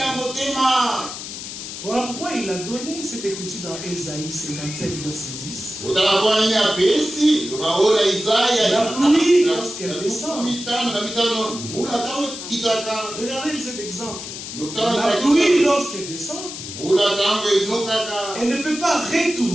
Voilà pourquoi il a donné cette écriture dans Ésaïe 57, verset 10. La pluie, lorsqu'elle descend. Regardez cet exemple. La pluie, lorsqu'elle descend, elle ne peut pas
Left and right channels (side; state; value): left; noise; hiss, 9 dB below the sound